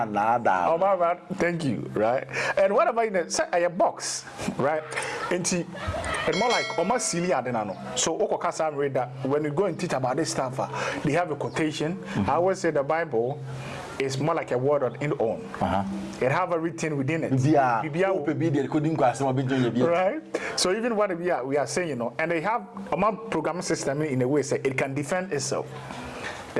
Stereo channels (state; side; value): identical; both; correlation 1.00